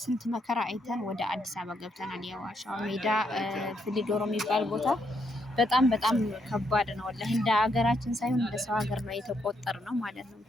ስንት መከራ አይተን ወደ አዲስ አበባ ገብተናል። የዋሻው ሜዳ ፍሊዶሮ የሚባል ቦታ በጣም ከባድ ነው። ወላሂ እንደ ሀገራችን ሳይሆን እንደ ሰው ሀገር ነው የተቆጠርነው ማለት ነው።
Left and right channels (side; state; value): both; normal; correlation 0.76